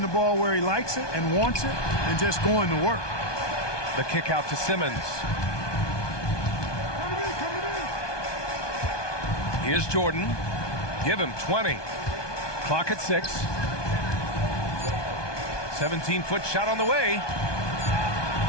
the ball where he likes it and wants it and just going to work. The kick out to Simmons. Here's Jordan. Give him 20. Clock at 6. 17-foot shot on the way.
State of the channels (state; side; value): late; right; 1.2 ms